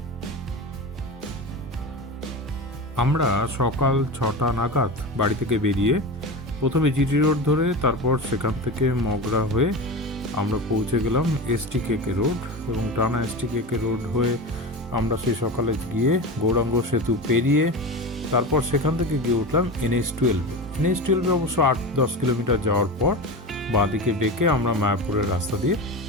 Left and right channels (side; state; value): both; normal; correlation 0.25